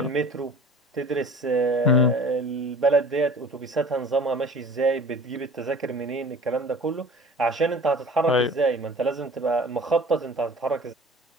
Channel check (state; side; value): normal; both; correlation 0.43